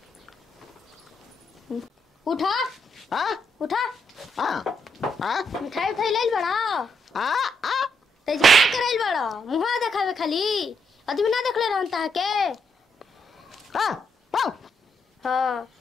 उठा उठा मिठाई उठाई ले बड़ा तेज क्या करैल बड़ा मुहा देखावे खाली आदमी ना देखले रहता है के। हाँ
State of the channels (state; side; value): normal; both; correlation 0.78